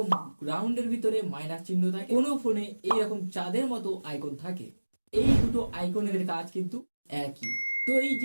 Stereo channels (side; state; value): both; inverted; correlation -1.00